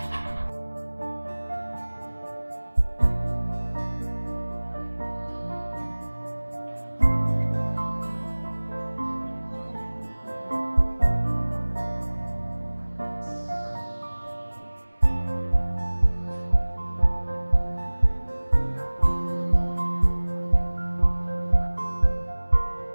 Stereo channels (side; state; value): both; inverted; correlation -1.00